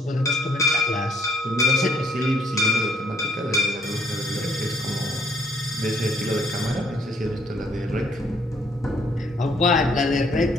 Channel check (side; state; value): both; normal; correlation 0.66